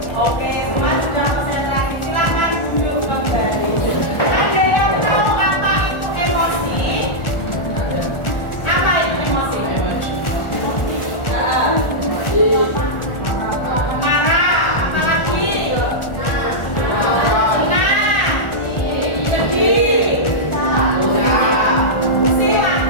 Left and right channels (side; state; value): right; late; 1.4 ms